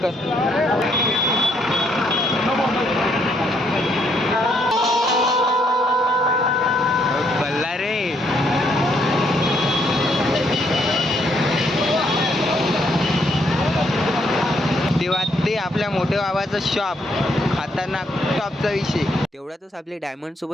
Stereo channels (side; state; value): both; normal; correlation 0.72